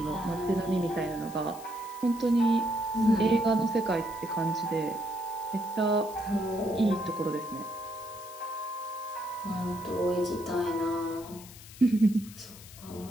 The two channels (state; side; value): noise; left; hiss, 17 dB below the sound